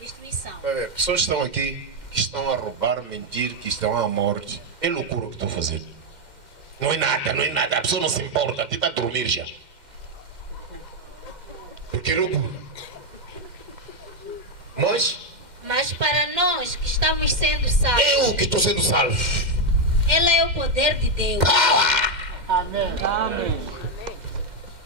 Pessoas estão aqui que estão a roubar, mentir, que estão à morte. É loucura o que estão fazendo. Não é nada, não é nada. A pessoa não se importa. Até está a dormir já. Porque é loucura. Mas para nós que estamos sendo salvos, eu que estou sendo salvo. Ele é o poder de Deus. Amém. Amém.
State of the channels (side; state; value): left; late; 2.1 ms